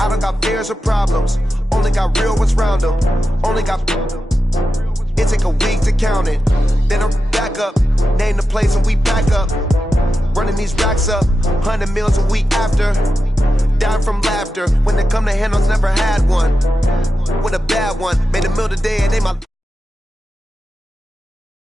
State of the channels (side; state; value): both; normal; correlation 0.90